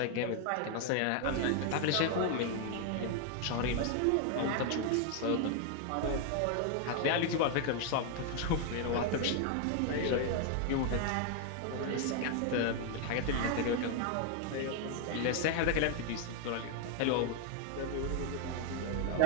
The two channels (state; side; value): different; both; correlation 0.00